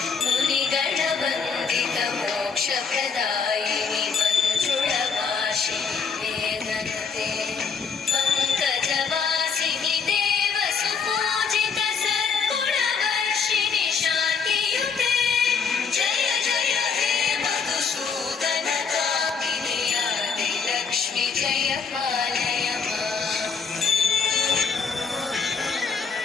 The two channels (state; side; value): quieter; right; 5.8 dB